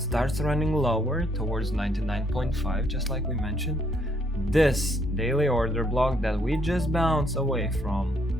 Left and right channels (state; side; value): normal; both; correlation 0.70